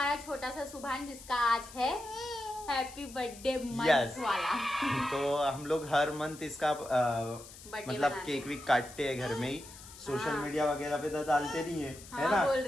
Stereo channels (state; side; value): noise; left; hiss, 17 dB below the sound